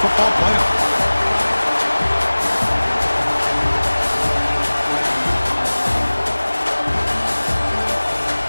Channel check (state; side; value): inverted; both; correlation -1.00